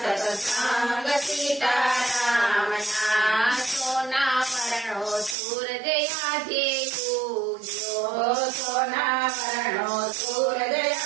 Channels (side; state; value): left; drops out; at 5.4 s